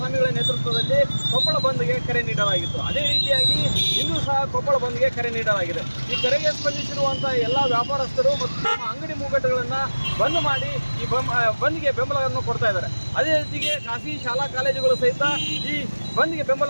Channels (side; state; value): both; inverted; correlation -1.00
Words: ನೇತೃತ್ವದಲ್ಲಿ ಕೊಪ್ಪಳ ಬಂದ್ಗೆ ಕರೆ ನೀಡಲಾಗಿತ್ತು. ಅದೇ ರೀತಿಯಾಗಿ ಇಂದು ಸಹ ಕೊಪ್ಪಳ ಬಂದ್ಗೆ ಕರೆ ನೀಡಲಾಗಿದೆ. ಈ ಕರೆಗೆ ಸ್ಪಂದಿಸಿರುವಂಥ ಎಲ್ಲ ವ್ಯಾಪಾರಸ್ಥರು ಮತ್ತು ತಮ್ಮ ಅಂಗಡಿ ಮುಂಗಟ್ಟುಗಳನ್ನು ಬಂದ್ ಮಾಡಿ ಈ ಬಂದ್ಗೆ ಬೆಂಬಲವನ್ನು ಕೊಡ್ತಾ ಇದ್ದಾರೆ. ಅದೇ ರೀತಿಗೆ ಖಾಸಗಿ ಶಾಲಾ ಕಾಲೇಜುಗಳು ಸಹಿತ ಈ ಬಂದ್ಗೆ